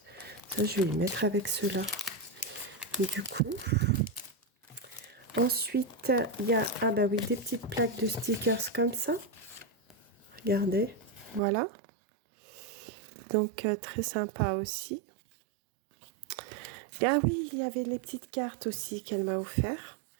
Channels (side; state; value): left; drops out; at 11.4 s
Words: Ça, je vais les mettre avec ceux-là. Du coup, ensuite, il y a oui, des petites plaques de stickers comme ça. Regardez, voilà. Donc, très sympa aussi. Ah oui, il y avait les petites cartes aussi qu'elle m'a offert.